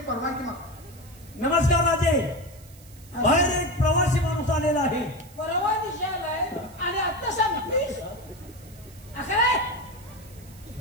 परवानगी माग नमस्कार राजे बाहेर एक प्रवासी माणूस आलेला आहे परवा दिवशी आलाय आणि आता सांगतोस असं रे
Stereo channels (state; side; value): noise; right; hiss, 23 dB below the sound